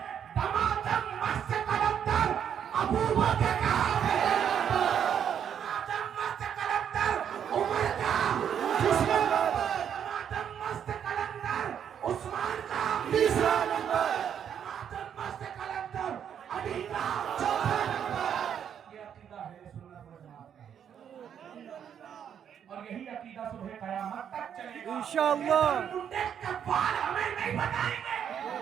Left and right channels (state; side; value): quieter; left; 8.6 dB